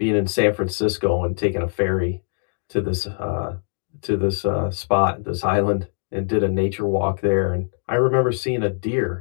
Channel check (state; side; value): silent; right; digital silence